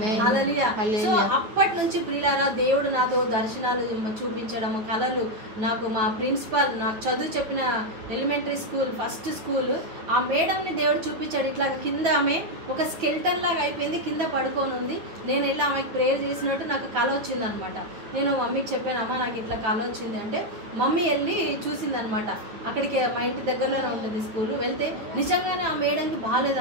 హల్లెలూయా. సో అప్పటి నుంచి ప్రియులారా, దేవుడు నాతో దర్శనాలు చూపించడం, కళలు, నాకు మా ప్రిన్సిపల్ నాకు చదువు చెప్పిన ఎలిమెంటరీ స్కూల్ ఫస్ట్ స్కూల్ ఆ మేడంని దేవుడు చూపించాడు. ఇట్లా కింద ఆమె ఒక స్కెల్టన్ లాగా అయిపోయింది, కింద పడుకొని ఉంది. నేను వెళ్ళి ఆమెకు ప్రేయర్ చేసినట్టు నాకు కళ వచ్చిందనమాట. నేను మమ్మీకి చెప్పాను, అమ్మ నాకు ఇట్లా కళ వచ్చింది అంటే మమ్మీ వెళ్ళి చూసిందనమాట. అక్కడికి మా ఇంటి దగ్గరలోనే ఉంటుంది స్కూల్. వెళ్తే నిజంగానే ఆ మేడంకి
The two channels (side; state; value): left; late; 9.2 ms